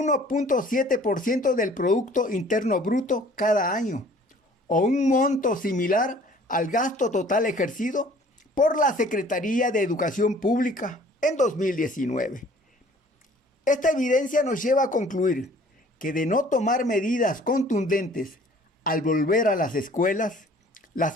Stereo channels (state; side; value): normal; both; correlation 0.53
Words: del Producto Interno Bruto cada año, o un monto similar al gasto total ejercido por la Secretaría de Educación Pública en 2019. Esta evidencia nos lleva a concluir que de no tomar medidas contundentes al volver a las escuelas,